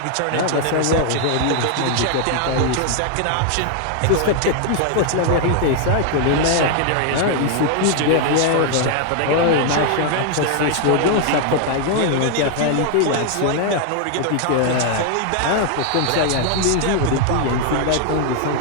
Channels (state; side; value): different; both; correlation 0.00